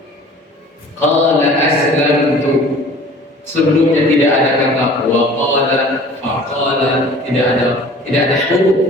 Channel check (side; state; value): both; normal; correlation 0.46